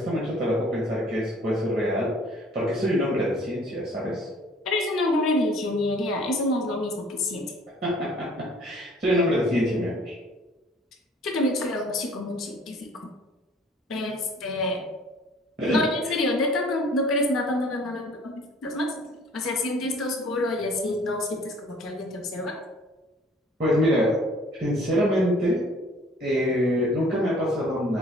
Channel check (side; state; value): both; normal; correlation 0.54